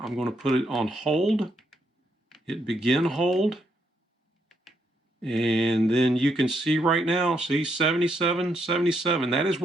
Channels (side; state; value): both; normal; correlation 0.77